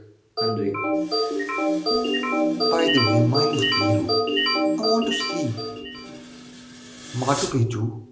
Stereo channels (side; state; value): both; identical; correlation 1.00